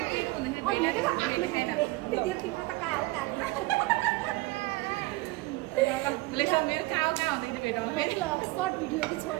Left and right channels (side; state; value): left; quieter; 21.1 dB